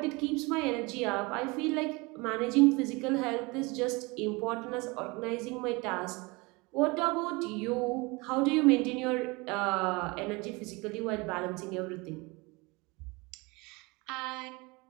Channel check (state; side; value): quieter; left; 25.7 dB